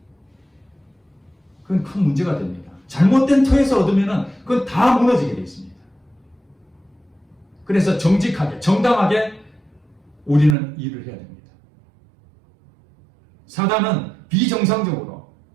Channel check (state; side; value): drops out; left; at 10.6 s